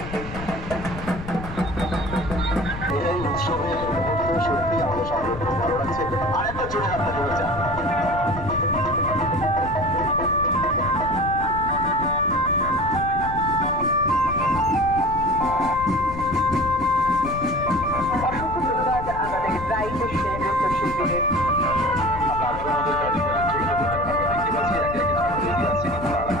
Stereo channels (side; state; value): left; noise; rumble, 10 dB below the sound